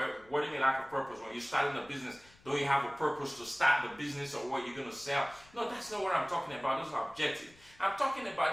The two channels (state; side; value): noise; left; rumble, 27 dB below the sound